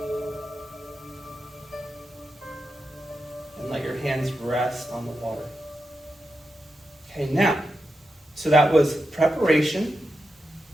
And let your hands rest on the water. Okay, now, so that was preparation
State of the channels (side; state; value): both; normal; correlation 0.88